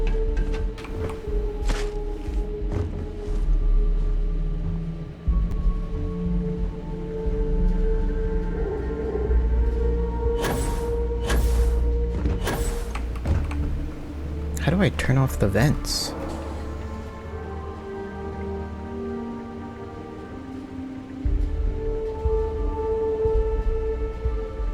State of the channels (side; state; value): both; identical; correlation 1.00